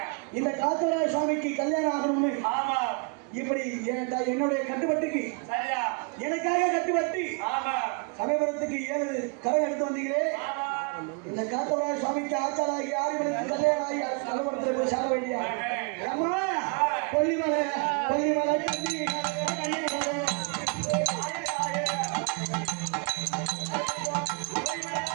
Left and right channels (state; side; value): quieter; left; 34.8 dB